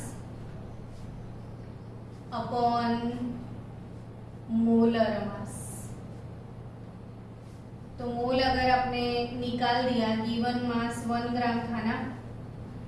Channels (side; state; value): both; identical; correlation 1.00